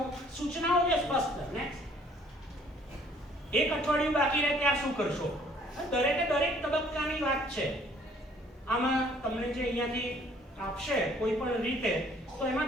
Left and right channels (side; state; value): both; normal; correlation 0.59